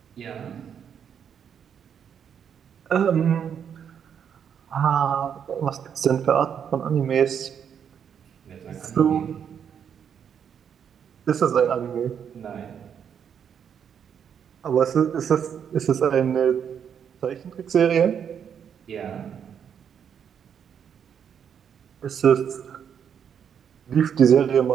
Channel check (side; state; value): left; quieter; 8.0 dB